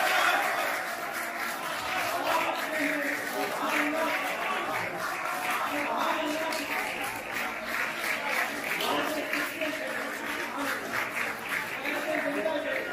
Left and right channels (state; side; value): identical; both; correlation 1.00